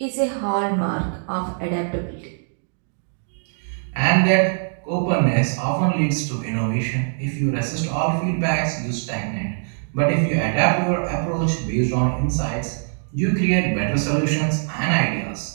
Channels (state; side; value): silent; left; digital silence